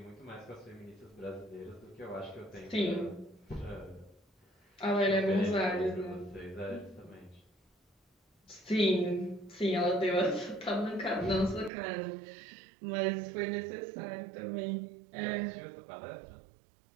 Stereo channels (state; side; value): drops out; left; at 11.7 s